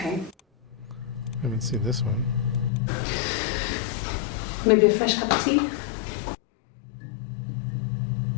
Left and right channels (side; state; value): right; drops out; at 2.7 s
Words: I haven't seen this one. Maybe a fresh cup of tea?